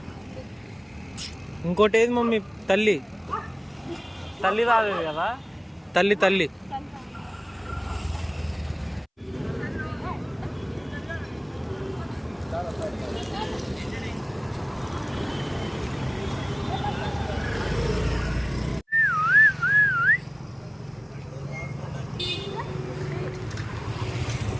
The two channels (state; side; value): identical; both; correlation 1.00